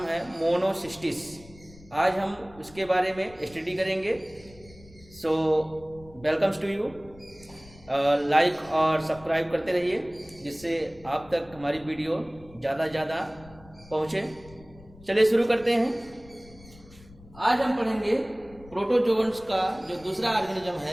है मोनोसिस्टिस। आज हम उसके बारे में स्टडी करेंगे। सो वेलकम्स टू यू। लाइक और सब्सक्राइब करते रहिए जिससे आप तक हमारी वीडियो ज़्यादा ज़्यादा पहुँचे। चलिए शुरू करते हैं। आज हम पढ़ेंगे प्रोटोजोअन्स का जो दूसरा ऑर्गेनिज्म है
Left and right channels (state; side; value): noise; left; rumble, 22 dB below the sound